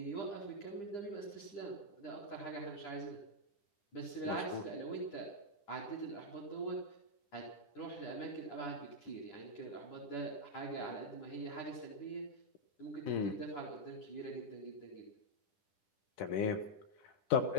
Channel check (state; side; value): late; right; 9.9 ms